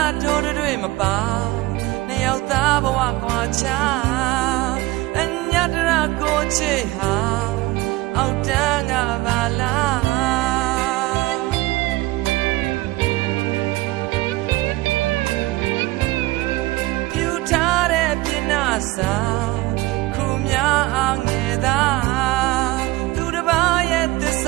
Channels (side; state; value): left; quieter; 19.6 dB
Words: ထိုးတွေမပါနှစ်ယောက်သားဘဝကွာချအညတရကိုချေဟာအောက်တန်းကပါလားပြူထားတဲ့ပြင်းနာစာခုများအငယ်သာသူတစ်ပါးရဲ့သစ္စ